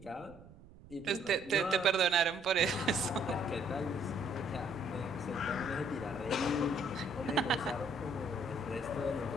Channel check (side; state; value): right; noise; rumble, 20 dB below the sound